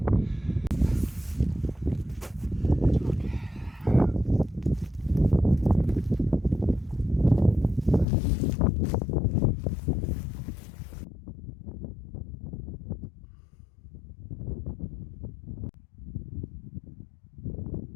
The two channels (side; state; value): right; drops out; at 8.1 s